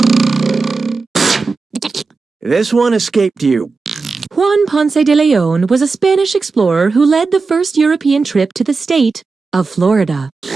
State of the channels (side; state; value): left; quieter; 4.3 dB